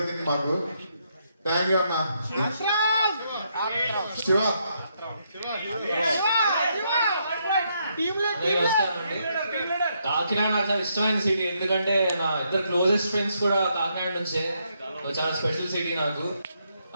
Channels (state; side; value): inverted; both; correlation -0.76